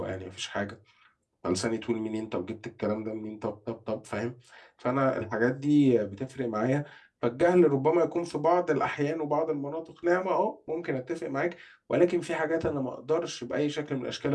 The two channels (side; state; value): both; identical; correlation 1.00